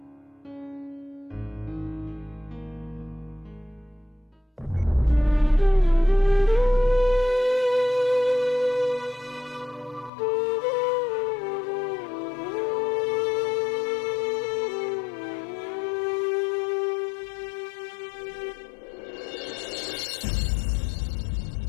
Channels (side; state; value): right; drops out; at 10.1 s